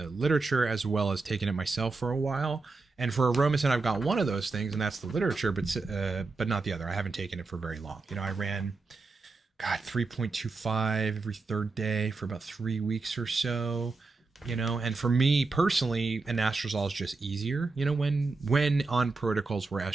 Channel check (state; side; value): quieter; left; 3.8 dB